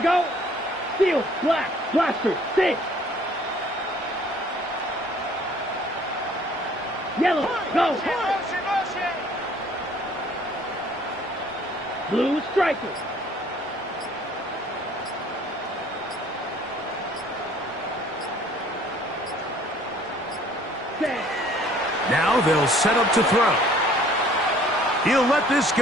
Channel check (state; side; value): normal; both; correlation 0.56